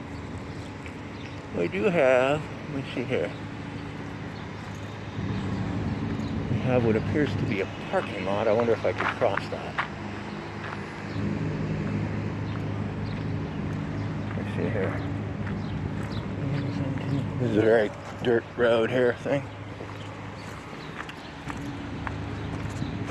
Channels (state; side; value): identical; both; correlation 1.00